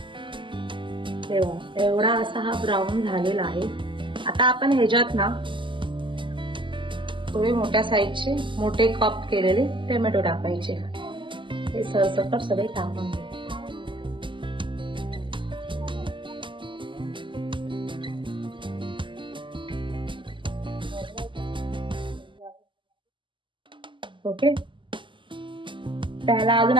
तेव्हा एवढा असा हा ब्राऊन झालेला आहे. आता आपण ह्याच्यात ना थोडे मोठ्या साईजचे मोठे कप केलेले टोमॅटो टाकायचे. ते सरसकट सगळे टाकून घे. ओके, त्याला अजून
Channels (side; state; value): left; late; 0.24 ms